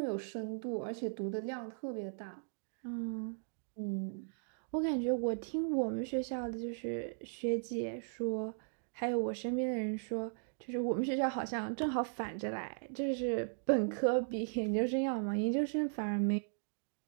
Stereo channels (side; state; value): left; silent; digital silence